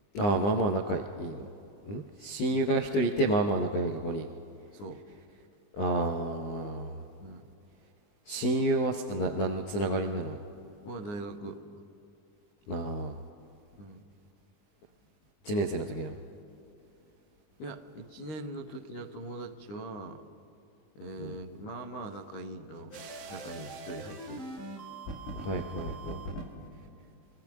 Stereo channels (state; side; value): late; right; 20 ms